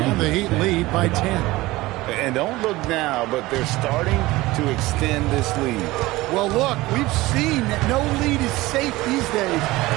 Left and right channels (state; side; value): quieter; left; 19.3 dB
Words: And the Heat lead by 10. And don't look now, but they're starting to extend this lead. Well, look, we've seen that no lead is safe these days.